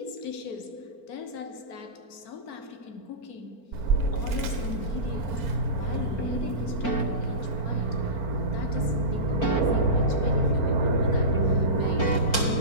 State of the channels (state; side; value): late; right; 4.4 ms